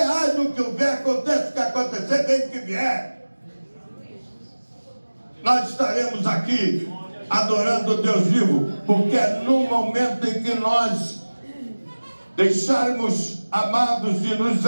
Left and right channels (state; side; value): inverted; both; correlation -1.00